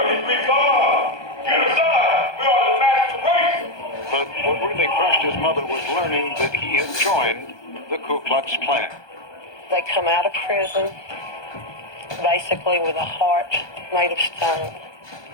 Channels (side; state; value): right; late; 1.2 ms